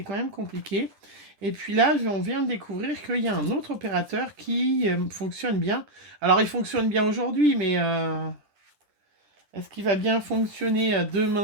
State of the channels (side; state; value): left; late; 10 ms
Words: quand même compliqué. Et puis là, on vient de découvrir qu'il y a un autre opérateur qui fonctionne bien. Alors, il fonctionne bien aujourd'hui, mais est-ce qu'il va bien fonctionner